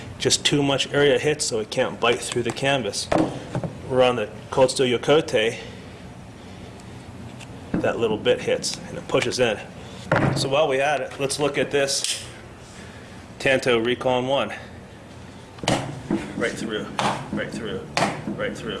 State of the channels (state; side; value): identical; both; correlation 1.00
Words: just too much area hits so it can't bite through the canvas. We're on the Cold Steel Yokote, that little bit hits and it pushes in. So while we at it, let's look at this Tanto Recon 1. Right through, right through, right through.